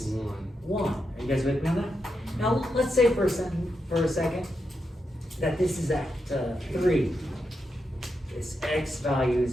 1. Are you guys with me on that? Now, let's say for a second that this is at 3. This x value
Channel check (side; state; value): both; normal; correlation 0.85